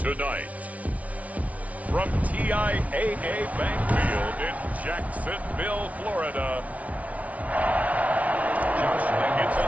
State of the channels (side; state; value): left; late; 0.068 ms